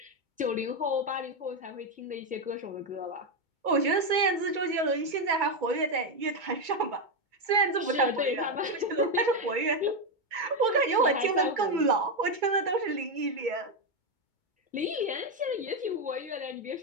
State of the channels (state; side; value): late; left; 2.2 ms